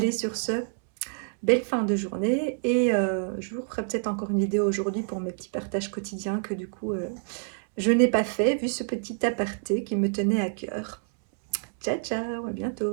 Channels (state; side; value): silent; left; 60 dB below the other